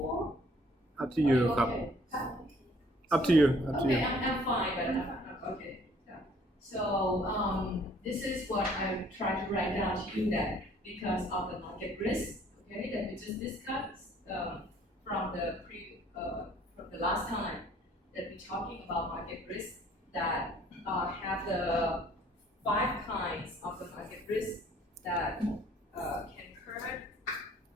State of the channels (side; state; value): both; normal; correlation 0.58